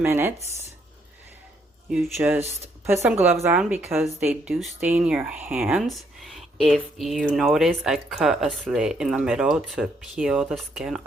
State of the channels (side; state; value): both; normal; correlation 0.71